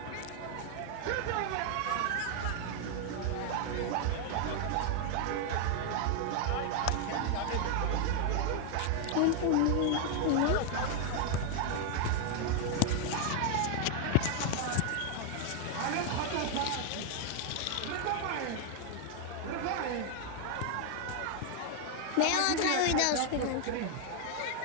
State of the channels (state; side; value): different; both; correlation 0.00